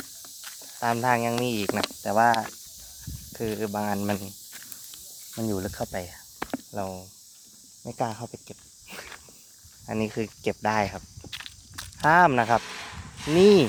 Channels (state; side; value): identical; both; correlation 1.00